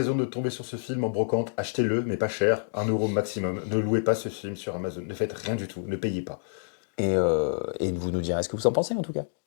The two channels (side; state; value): right; silent; digital silence